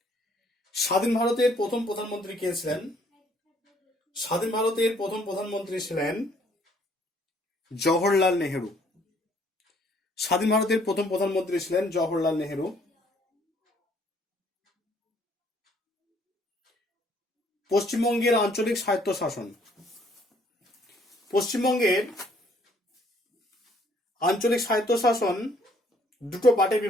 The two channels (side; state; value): both; normal; correlation 0.63